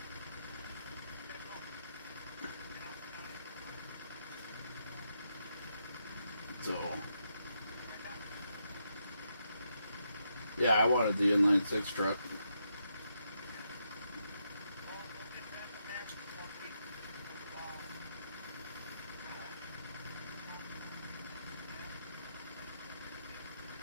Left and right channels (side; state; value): both; inverted; correlation -0.81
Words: So, Yeah, I wanted the inline 6 truck.